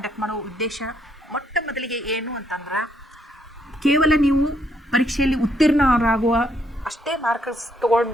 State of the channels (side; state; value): both; normal; correlation 0.72